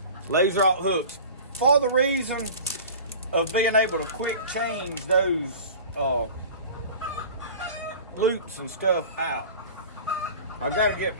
laser-alt hooks for the reason of being able to quick change those loops and stuff out. I got to get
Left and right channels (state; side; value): inverted; both; correlation -0.39